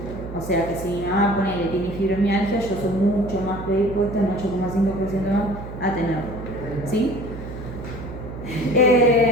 O sea que si mi mamá tiene fibromialgia, yo soy mucho más predispuesta, un 8,5% más, a tenerlo. ¿Sí?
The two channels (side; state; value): right; noise; hum, 11 dB below the sound